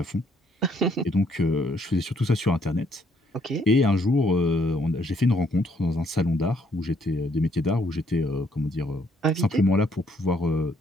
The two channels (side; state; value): both; normal; correlation 0.68